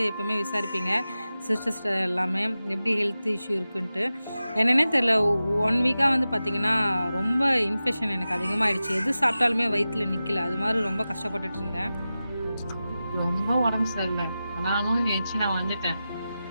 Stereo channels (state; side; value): inverted; both; correlation -0.94